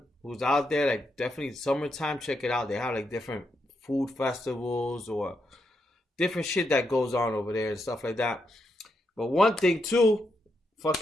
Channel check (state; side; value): normal; both; correlation 0.82